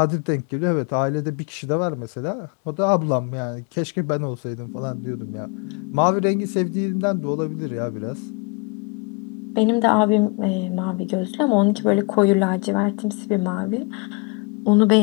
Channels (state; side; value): quieter; right; 29.0 dB